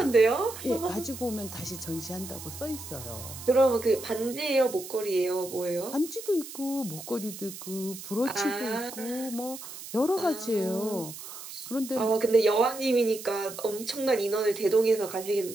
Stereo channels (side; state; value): right; noise; hiss, 12 dB below the sound